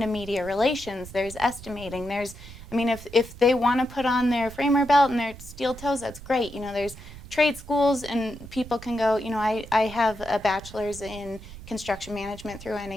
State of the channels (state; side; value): noise; right; rumble, 15 dB below the sound